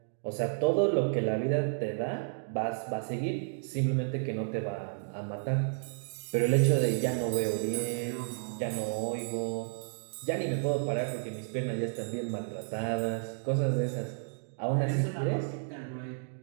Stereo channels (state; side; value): silent; left; digital silence